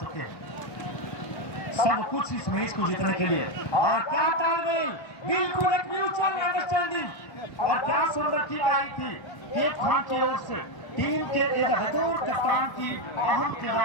हैं, सब कुछ इस मैच को जीतने के लिए। और क्या तालमेल, बिल्कुल एक म्यूचुअल अंडरस्टैंडिंग और क्या सुंदर किक आई थी केप खान की ओर से टीम के एक बतौर कप्तान की अहम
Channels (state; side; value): late; right; 1.2 ms